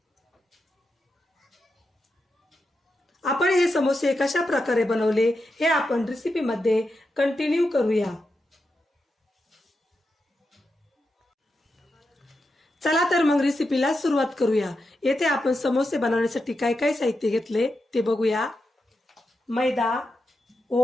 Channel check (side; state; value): both; normal; correlation 0.87